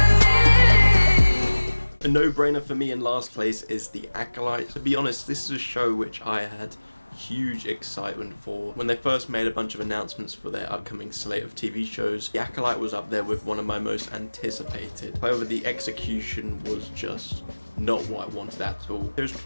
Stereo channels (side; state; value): both; inverted; correlation -1.00